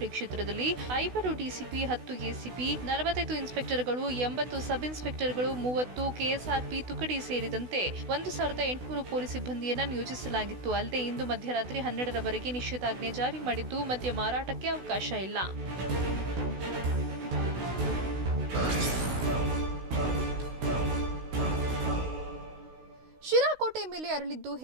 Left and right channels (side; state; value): left; late; 16 ms